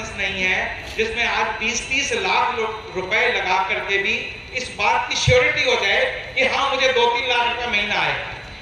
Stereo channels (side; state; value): both; identical; correlation 1.00